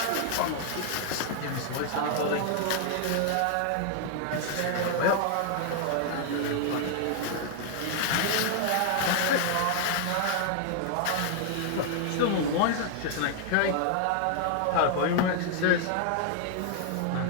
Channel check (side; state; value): both; different; correlation 0.00